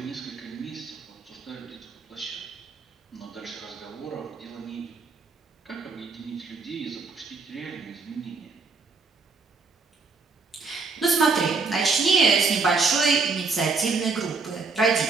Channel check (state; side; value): quieter; left; 4.3 dB